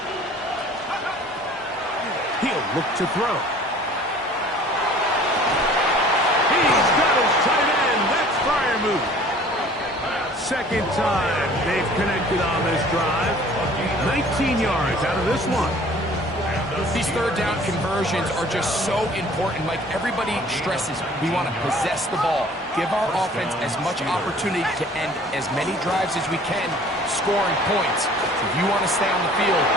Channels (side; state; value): both; normal; correlation 0.50